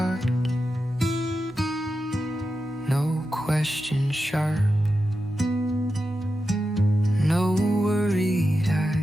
No question sharp, no worried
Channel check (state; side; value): normal; both; correlation 0.90